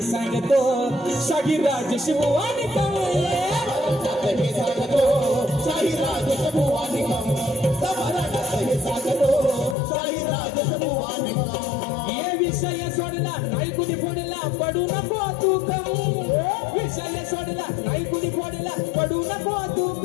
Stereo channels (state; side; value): drops out; right; at 9.8 s